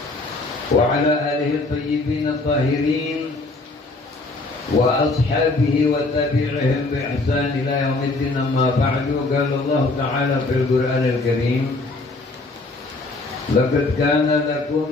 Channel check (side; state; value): right; quieter; 3.2 dB